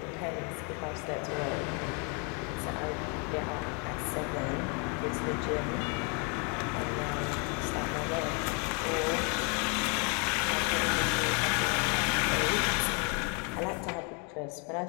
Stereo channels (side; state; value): right; quieter; 35.0 dB